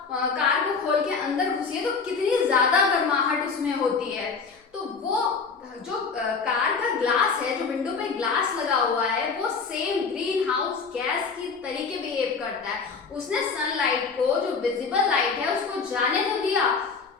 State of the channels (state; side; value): quieter; right; 5.1 dB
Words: कार को खोल के अंदर घुसिए तो कितनी ज्यादा गर्माहट उसमें होती है। तो वो जो कार का ग्लास है, जो विंडो पे ग्लास लगा हुआ है, वो सेम ग्रीन हाउस गैस की तरीके बिहेव करता है। उसने सनलाइट को, जो विजिबल लाइट है, उसको जाने तो दिया।